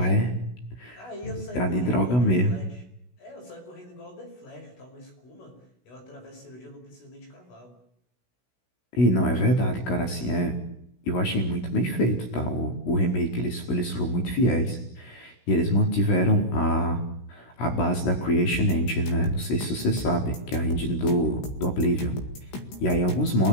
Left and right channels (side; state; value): right; late; 16 ms